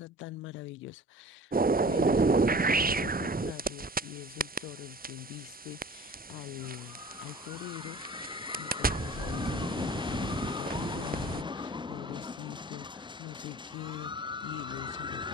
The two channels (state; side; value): normal; both; correlation 0.43